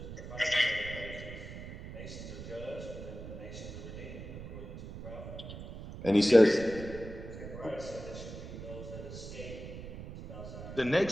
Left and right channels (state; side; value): noise; right; rumble, 10 dB below the sound